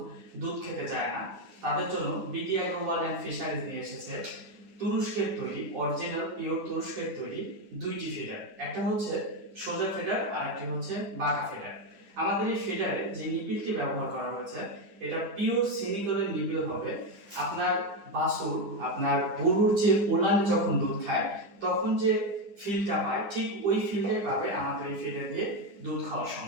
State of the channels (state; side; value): late; left; 9.8 ms